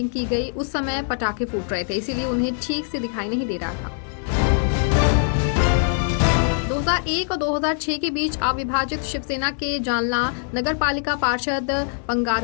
की गई उस समय पटाखे फूट रहे थे, इसीलिए उन्हें ठीक से दिखाई नहीं दे रहा था। 2001 और 2006 के बीच अविभाजित शिवसेना के जालना नगर पालिका पार्षद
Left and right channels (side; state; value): right; silent; digital silence